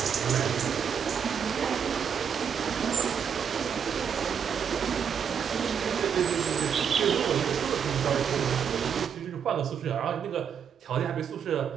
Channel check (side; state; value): left; quieter; 7.5 dB